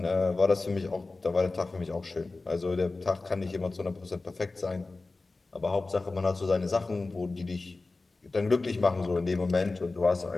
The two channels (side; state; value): right; quieter; 3.5 dB